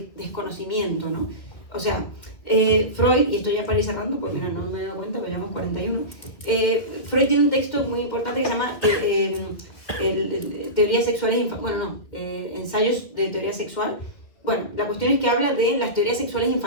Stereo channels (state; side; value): late; right; 2.2 ms